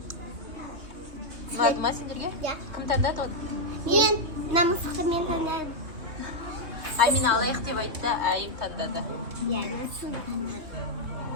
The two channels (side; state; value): left; late; 3.2 ms